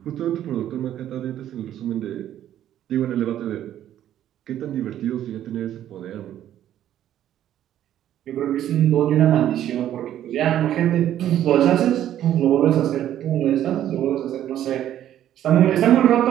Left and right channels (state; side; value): quieter; left; 11.6 dB